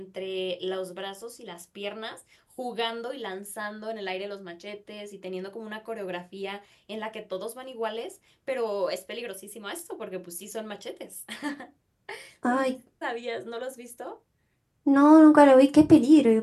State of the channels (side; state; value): both; identical; correlation 1.00